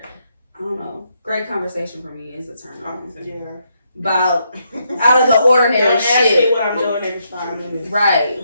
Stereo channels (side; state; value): both; inverted; correlation -0.77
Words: I don't know. great conversation for me is a turn on. Yeah. About out of the ordinary Don't ask me shit. what I'm doing every 5 minutes. Right.